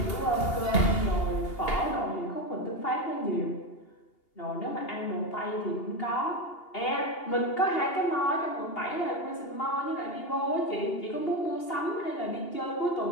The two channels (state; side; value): late; right; 2.8 ms